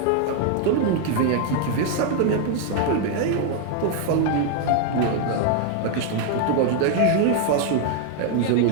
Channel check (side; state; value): both; different; correlation 0.00